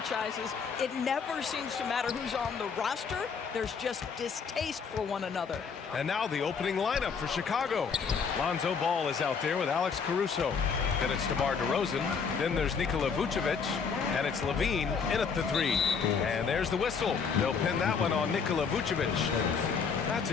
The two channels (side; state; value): right; quieter; 5.9 dB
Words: It never seems to matter who's on the roster. There's just distaste for one another. And now the opening lineup for Chicago. Lonzo Ball is out there with Alex Caruso. Then it's DeMar DeRozan. Then there's Nikola Vucevic. And it's Levine in at the 3. And there's the whistle. They'll pin that one on Nikola Vucevic. That's